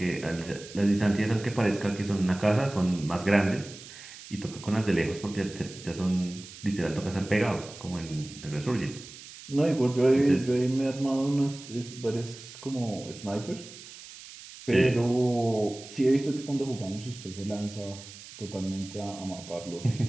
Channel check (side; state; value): right; noise; hiss, 16 dB below the sound